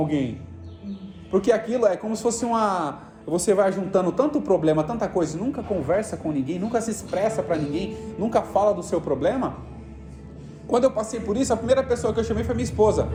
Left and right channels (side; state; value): both; identical; correlation 1.00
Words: Porque aquilo é como se fosse você vai juntando tanto problema, tanta coisa, nunca conversa com ninguém, nunca se expressa para ninguém, nunca fala do seu problema. Quando eu passei por isso, a primeira pessoa que eu chamei foi minha esposa.